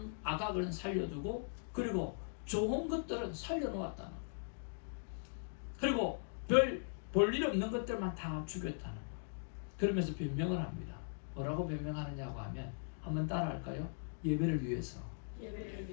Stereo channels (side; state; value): right; silent; digital silence